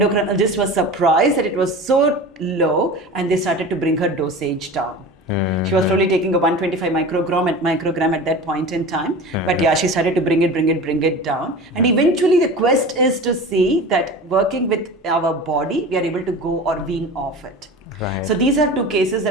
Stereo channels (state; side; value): normal; both; correlation 0.34